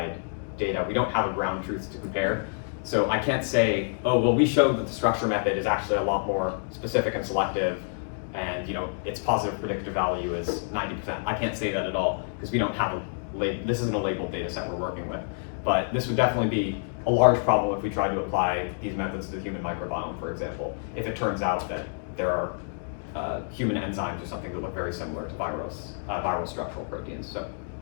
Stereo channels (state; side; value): silent; right; digital silence